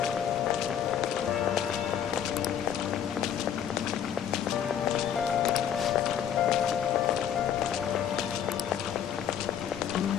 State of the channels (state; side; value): quieter; right; 9.2 dB